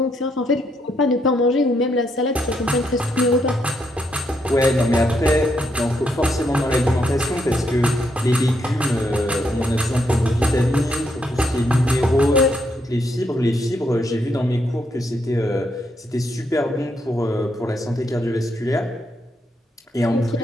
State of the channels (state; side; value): normal; both; correlation 0.77